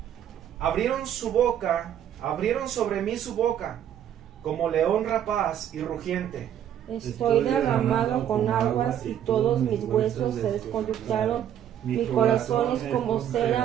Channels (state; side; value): quieter; left; 10.2 dB